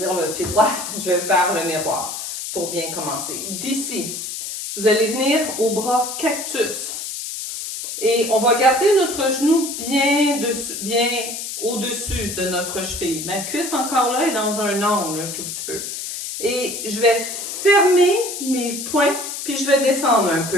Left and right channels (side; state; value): left; noise; hiss, 6 dB below the sound